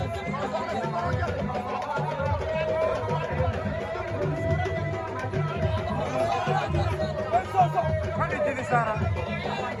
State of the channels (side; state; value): both; identical; correlation 1.00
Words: Fadi Dini Sara